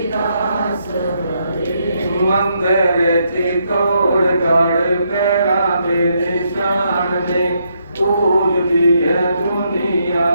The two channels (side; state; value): both; inverted; correlation -0.77